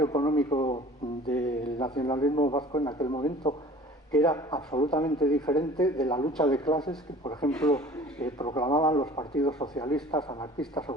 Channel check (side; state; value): both; normal; correlation 0.46